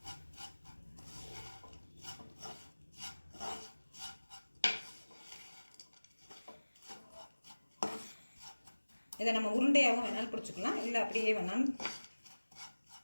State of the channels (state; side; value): inverted; both; correlation -1.00